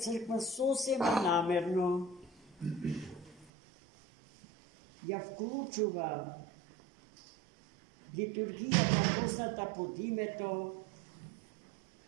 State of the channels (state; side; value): drops out; left; at 3.5 s